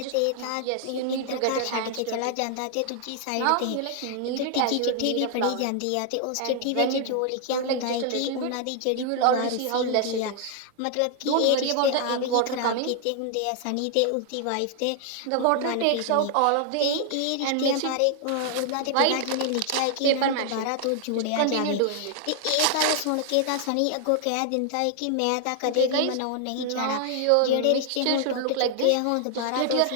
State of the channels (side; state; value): both; different; correlation 0.00